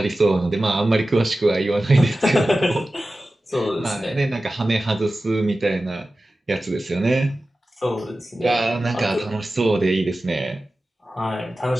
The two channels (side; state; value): both; normal; correlation 0.95